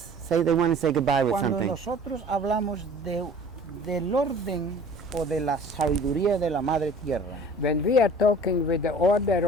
they want to say goodbye with Cuando something. nosotros hablamos del orden o de la sabiduría de la Madre Tierra, When we are talking with the order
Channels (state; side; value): normal; both; correlation 0.47